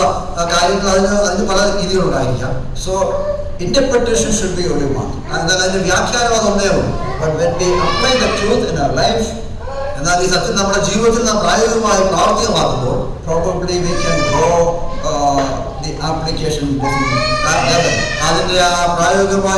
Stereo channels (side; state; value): both; identical; correlation 1.00